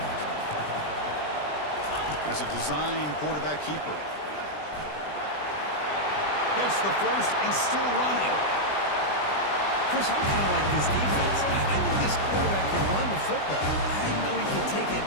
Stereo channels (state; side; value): late; right; 20 ms